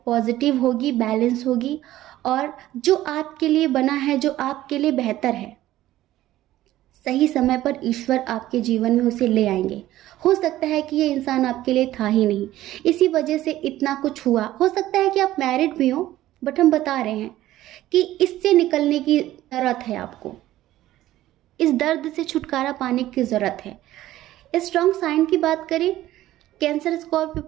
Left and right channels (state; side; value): quieter; left; 14.7 dB